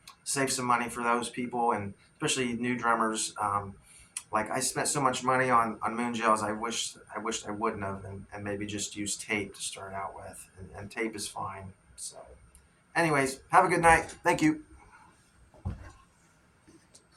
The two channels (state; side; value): identical; both; correlation 1.00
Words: save some money for those people, and especially new drummers. Like I spent so much money on moon gels, I wished I wouldn't have, and maybe just use tape to start out with, and tape is fine. So anyways, have a good night. Thank you.